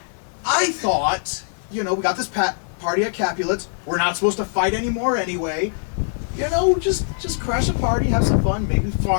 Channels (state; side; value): silent; right; 64 dB below the other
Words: I thought, we got this party at Capulet's. We're not supposed to fight anymore anyway. Just crash a party, have some fun, maybe